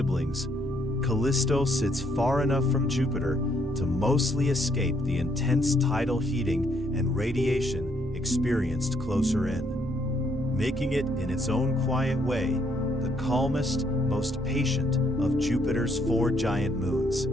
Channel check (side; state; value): both; normal; correlation 0.71